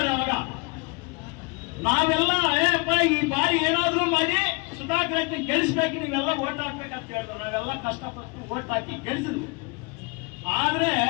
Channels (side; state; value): right; quieter; 29.8 dB